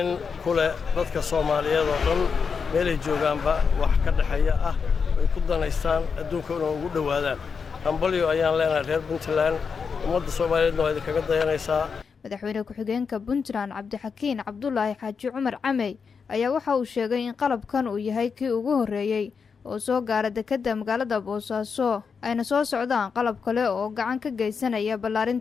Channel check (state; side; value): quieter; right; 5.7 dB